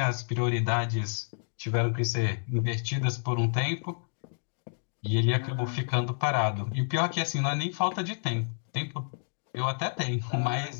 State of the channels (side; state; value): right; silent; digital silence